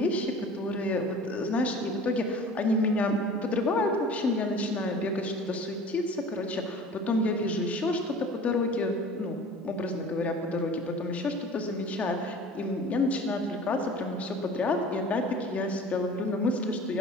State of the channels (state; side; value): normal; both; correlation 0.42